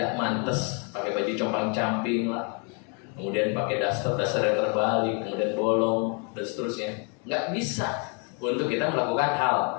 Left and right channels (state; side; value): quieter; right; 36.5 dB